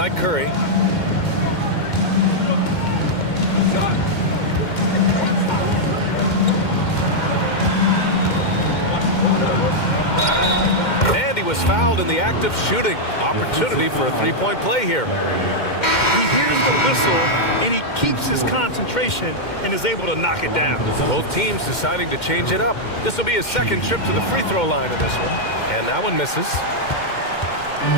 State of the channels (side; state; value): right; late; 2.1 ms